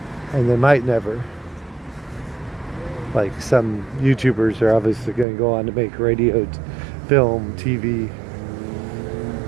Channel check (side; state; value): left; drops out; at 5.2 s